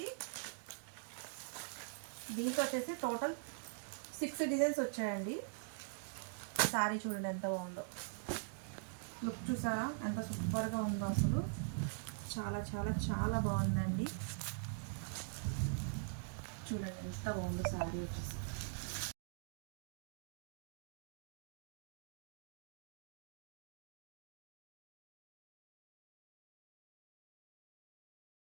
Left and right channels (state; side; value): silent; left; digital silence